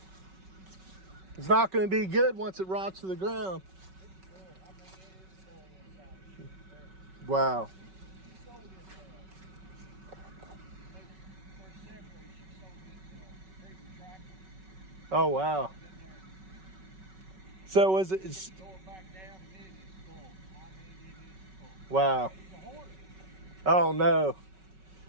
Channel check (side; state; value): left; late; 5.3 ms